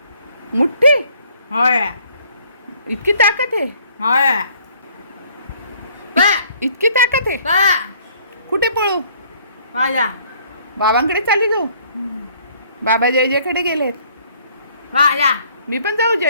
मुठ्ठी होय इतकी ताकद आहे, होय बा इतकी ताकद आहे. बा कुठे पळू? माझा बाबांकडे चालली जाऊ. बाबा जय जयकडे गेलेत. माझा मी पण जाऊ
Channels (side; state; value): both; inverted; correlation -0.60